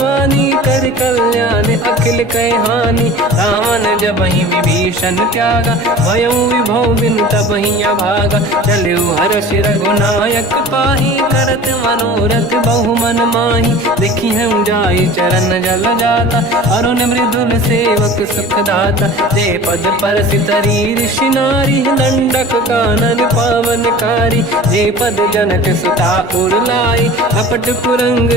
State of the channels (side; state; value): both; normal; correlation 0.40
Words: कर कल्याण अखिल कह हानि। रावण जबहि विभीषण त्यागा, भयउ विभव बिनु तबहि अभागा। चलऊ हर्ष रघुनायक पाहि, करत मनोरथ बहु मन माहि। देखी हूँ जाई चरण जल जाता, अरुण मृदुल सेवक सुख दाता। जे पद पर सितरी ऋषि नारी, दंडक कानन पावनकारी। जे पद जनक सुता उर लाई, अपट पुरंग